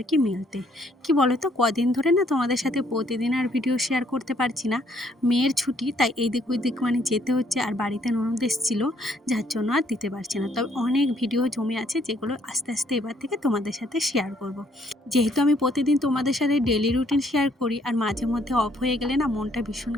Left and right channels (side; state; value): both; normal; correlation 0.66